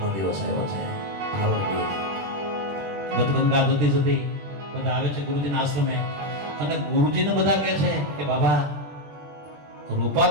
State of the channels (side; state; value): left; late; 21 ms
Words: દિવસ આવ્યો છે. ગદગંગા જતી જતી બધા આવે છે ગુરુજીના આશ્રમે અને ગુરુજીને બધા કહે છે કે બાબા,